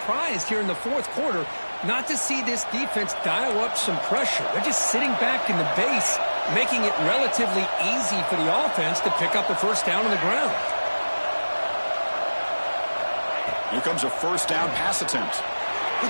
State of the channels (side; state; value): both; inverted; correlation -1.00